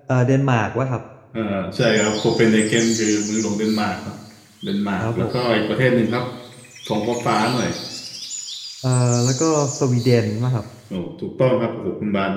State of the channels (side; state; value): both; identical; correlation 1.00